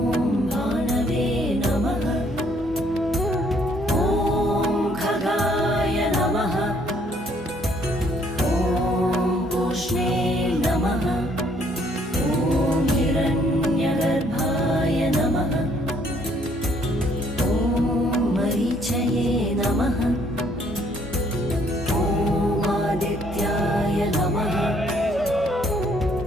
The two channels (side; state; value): both; normal; correlation 0.65